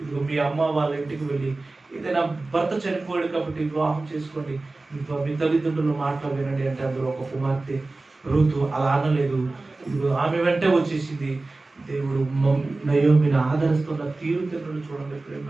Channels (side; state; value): left; quieter; 3.2 dB